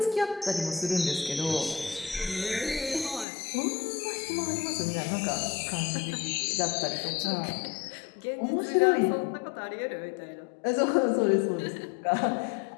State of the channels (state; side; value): drops out; right; at 3.2 s